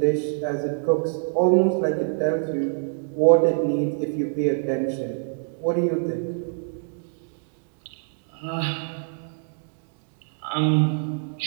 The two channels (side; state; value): left; silent; digital silence